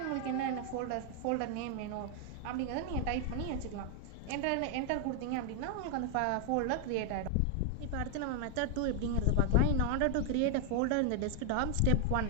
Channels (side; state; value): both; different; correlation 0.00